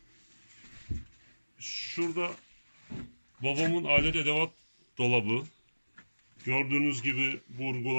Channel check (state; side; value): inverted; both; correlation -1.00